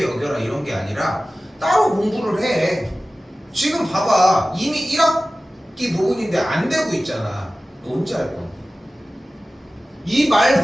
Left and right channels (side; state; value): both; normal; correlation 0.96